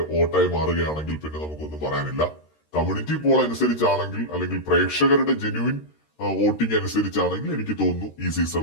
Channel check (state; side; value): late; right; 13 ms